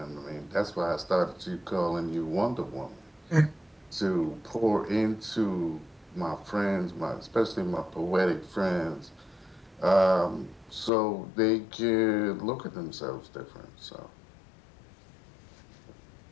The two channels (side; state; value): right; drops out; at 10.9 s